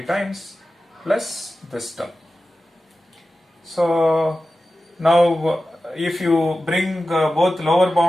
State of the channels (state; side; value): normal; both; correlation 0.94